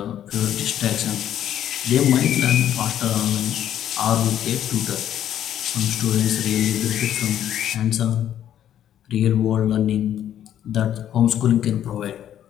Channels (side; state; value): right; quieter; 10.8 dB